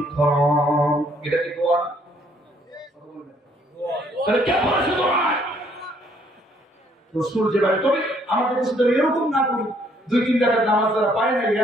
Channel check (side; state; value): both; normal; correlation 0.66